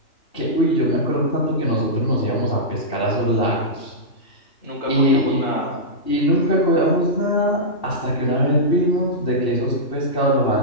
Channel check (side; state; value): right; late; 2.7 ms